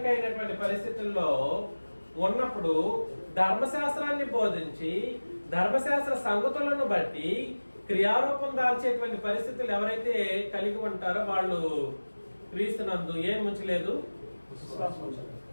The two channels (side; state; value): both; inverted; correlation -1.00